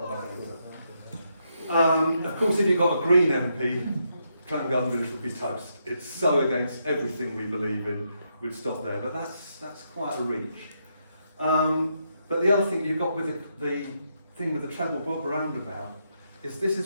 that later. Of course, if you've got a Green MP, Clan Garden Village would be toast. It's so against everything we believe in. We'd stop there, but that's quite a reach. But the other thing you've got with the thing with the Treble Bob roundabout is this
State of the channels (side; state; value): both; inverted; correlation -0.80